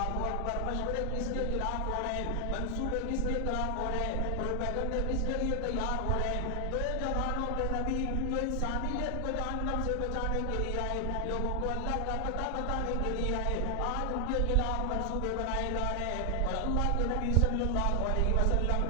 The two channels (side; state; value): both; different; correlation 0.00